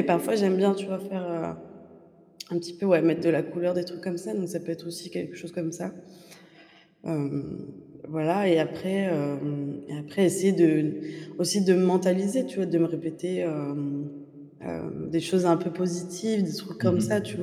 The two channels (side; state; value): both; identical; correlation 1.00